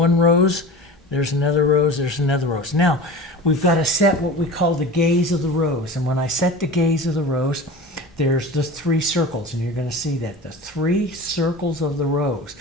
rose, there's another rose, there's another rose. Now we've got to set what we call the gaze of the rose, and when I set the gaze of the rose, there's the three circles, and you're going to see that the three circles of the rose.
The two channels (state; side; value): normal; both; correlation 0.34